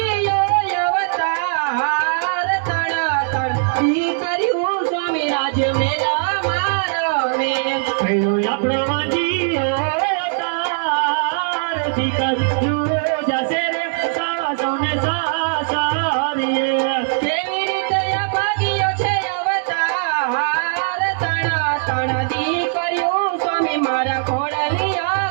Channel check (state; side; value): silent; left; digital silence